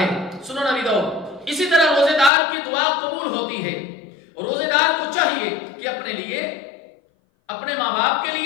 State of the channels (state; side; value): drops out; right; at 2.3 s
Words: سنن ابی داؤد۔ اسی طرح روزے دار کی دعا قبول ہوتی ہے۔ روزے دار کو چاہیے کہ اپنے لیے، اپنے ماں باپ کے